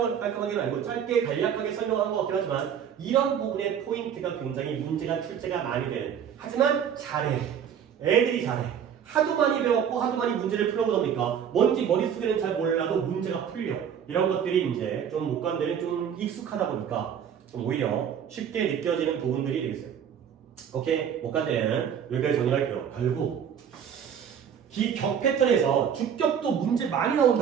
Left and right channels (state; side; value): quieter; left; 8.3 dB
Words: 깔끔하게는 아니고 짧게 간략하게 설명한 것 같긴 하지만 이런 부분의 포인트가 굉장히 문제가 출제가 많이 되는. 하지만 잘해. 애들이 잘해. 하도 많이 배웠고 하도 많이 문제를 풀어보다 보니까 뭔지 머릿속에는 잘 몰라도 문제가 풀려. 이런 것들이 이제 좀 못간대는 좀 익숙하다 보니까 좀 오히려 쉽게 느껴지는 부분들이 되겠어요. 오케이, 못간대는 여기까지 정리할게요. 결국 기격 패턴에서 주격도 문제 많이